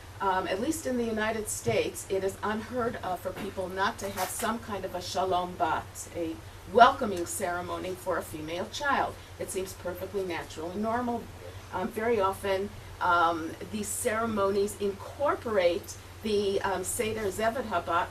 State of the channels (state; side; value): identical; both; correlation 1.00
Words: At least in the United States, it is unheard of for people not to have some kind of a shalom bat, a welcoming ceremony for a female child. It seems perfectly natural and normal. Very often, these ceremonies incorporate the Seder Zevet Habat,